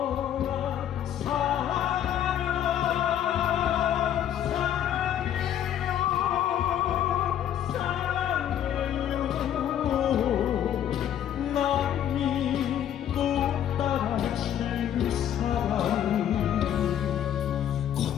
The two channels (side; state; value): right; quieter; 10.4 dB